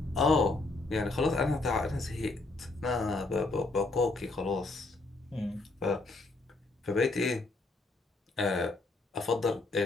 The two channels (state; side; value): quieter; right; 3.3 dB